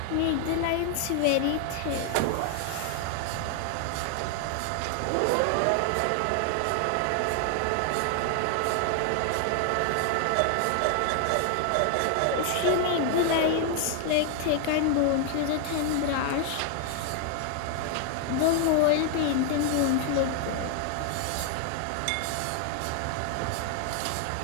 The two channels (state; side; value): different; both; correlation 0.00